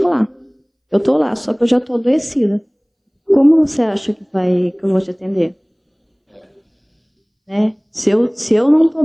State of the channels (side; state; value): both; identical; correlation 1.00